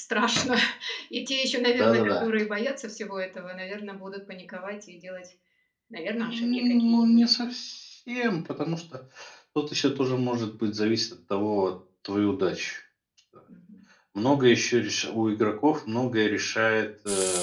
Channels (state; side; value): identical; both; correlation 1.00